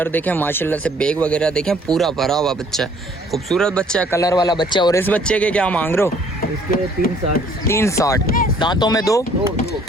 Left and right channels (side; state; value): both; normal; correlation 0.59